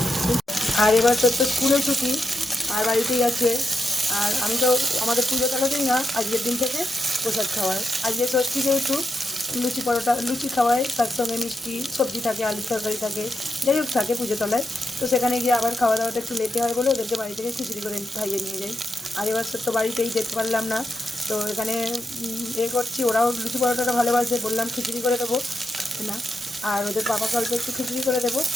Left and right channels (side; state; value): both; normal; correlation 0.86